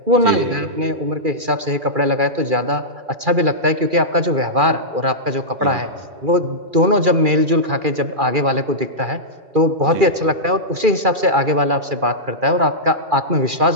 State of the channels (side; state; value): left; late; 2.4 ms